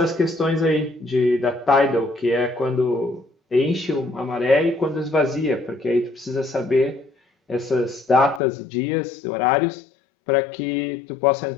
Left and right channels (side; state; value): right; drops out; at 8.4 s